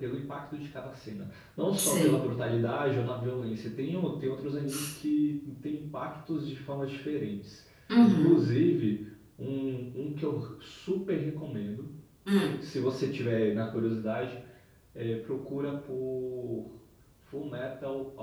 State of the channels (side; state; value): both; identical; correlation 1.00